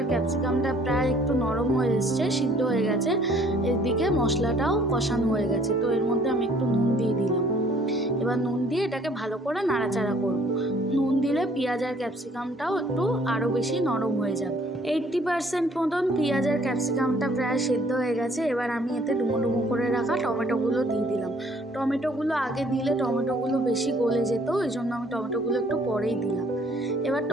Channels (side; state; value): both; normal; correlation 0.59